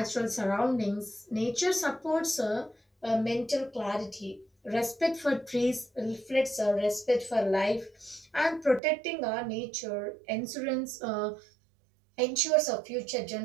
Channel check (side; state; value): left; drops out; at 8.8 s